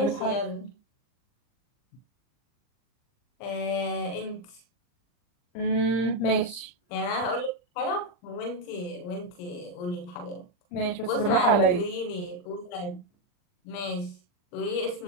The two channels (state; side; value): late; right; 39 ms